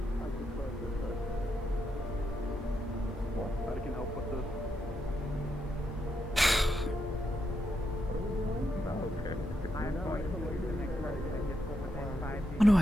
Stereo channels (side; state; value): both; normal; correlation 0.82